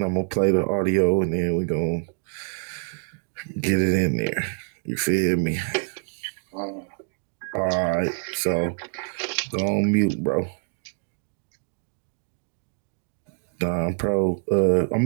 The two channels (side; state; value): left; silent; 61 dB below the other